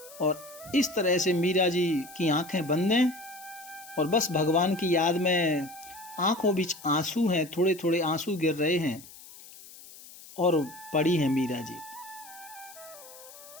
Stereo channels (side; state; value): left; noise; hiss, 19 dB below the sound